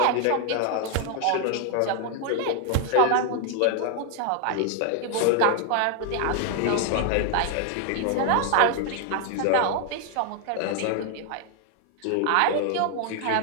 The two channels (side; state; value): both; different; correlation 0.00